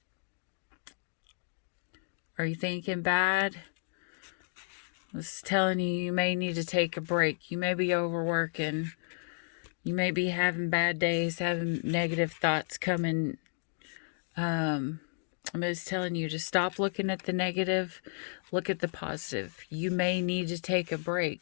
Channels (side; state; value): right; silent; digital silence